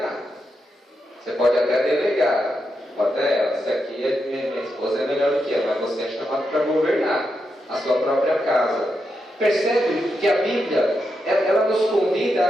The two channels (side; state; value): both; normal; correlation 0.85